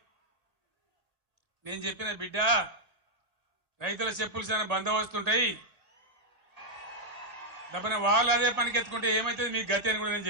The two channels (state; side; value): late; left; 1.9 ms